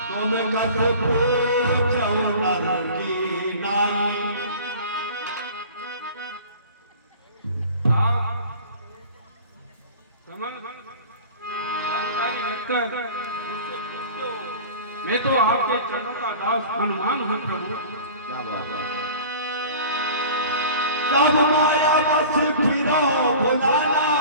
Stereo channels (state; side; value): inverted; both; correlation -0.41